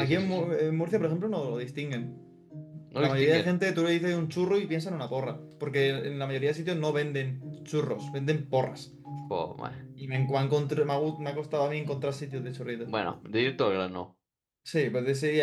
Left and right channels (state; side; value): identical; both; correlation 1.00